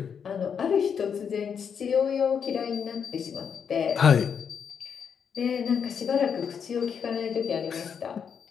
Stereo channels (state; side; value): quieter; right; 7.1 dB